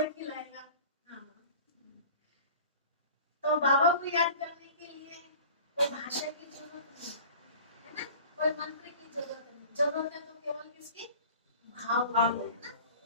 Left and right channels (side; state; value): both; inverted; correlation -0.42